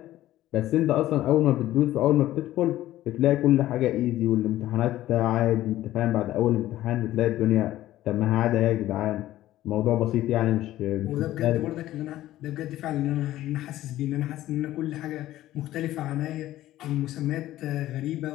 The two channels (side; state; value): right; quieter; 14.5 dB